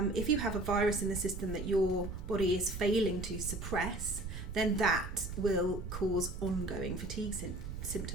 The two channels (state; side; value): noise; right; rumble, 7 dB below the sound